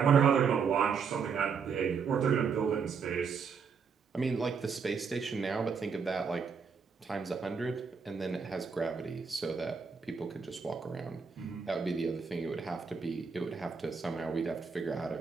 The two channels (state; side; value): quieter; left; 5.9 dB